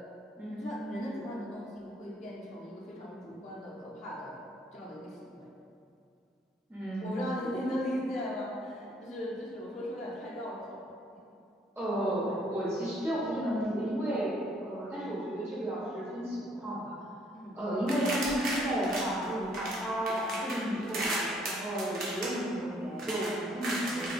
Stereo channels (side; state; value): both; normal; correlation 0.64